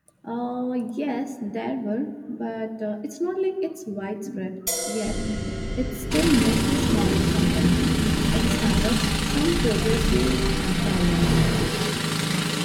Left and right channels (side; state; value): both; identical; correlation 1.00